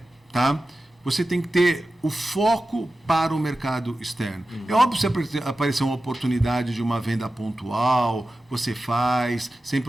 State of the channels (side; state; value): both; normal; correlation 0.94